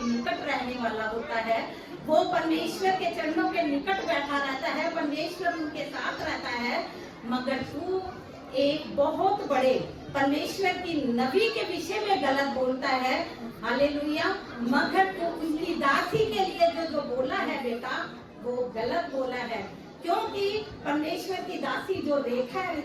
निकट रहने वाला होता है, वो परमेश्वर के चरणों के निकट बैठा रहता है, परमेश्वर उनके साथ रहता है। मगर तू एक बहुत बड़े परमेश्वर की नबी के विषय में गलत बोलता है। हालेलुया। मगर तू उनकी दासी के लिए जो बोला है बेटा वो गलत बोला है, क्योंकि परमेश्वर की दासी जो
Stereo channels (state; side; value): identical; both; correlation 1.00